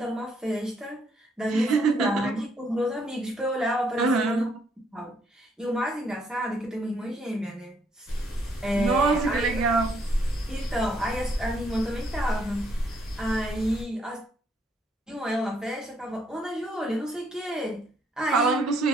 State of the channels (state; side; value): normal; both; correlation 0.70